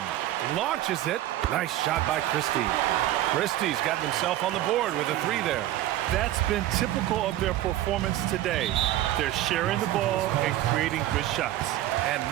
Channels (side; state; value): left; quieter; 14.0 dB